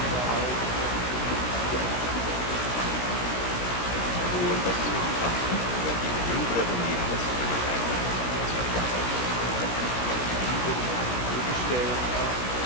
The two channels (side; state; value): right; late; 17 ms